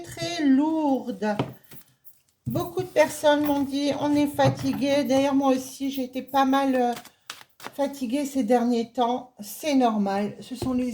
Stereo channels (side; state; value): both; identical; correlation 1.00